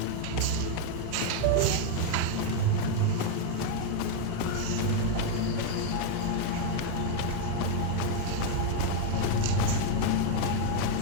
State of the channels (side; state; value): both; different; correlation 0.01